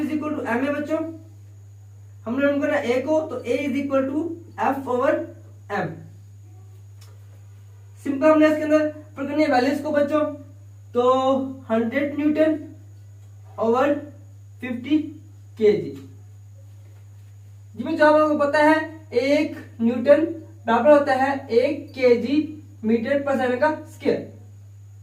is equal to M A बच्चों। हमने मालूम करना है ए को, तो ए is equal to F over M. Simple हमने इसके अंदर पुट करनी है वैल्यूज को बच्चों। तो 100 न्यूटन ओवर 50 केजी। जिसमें जो आपको पता है 1 न्यूटन बराबर होता है 1 केजी मीटर पर सेकंड का स्क्वायर।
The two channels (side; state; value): both; identical; correlation 1.00